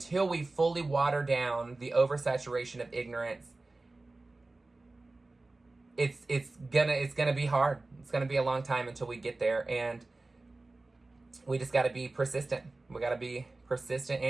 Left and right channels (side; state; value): left; quieter; 3.2 dB